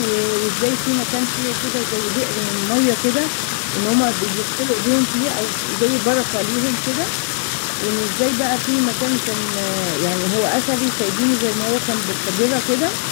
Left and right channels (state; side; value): silent; right; 67 dB below the other